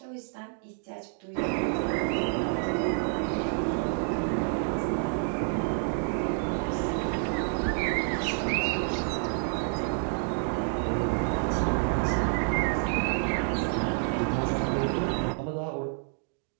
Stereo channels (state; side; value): silent; left; 59 dB below the other